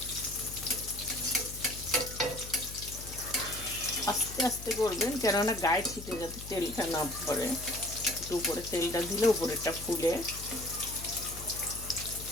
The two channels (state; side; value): noise; left; hum, 12 dB below the sound